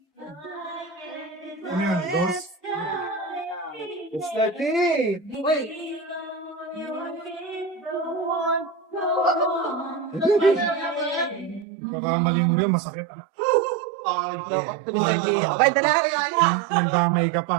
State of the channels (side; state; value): left; drops out; at 11.7 s